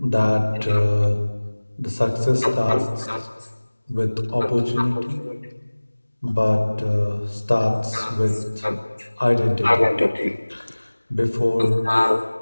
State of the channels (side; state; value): both; inverted; correlation -1.00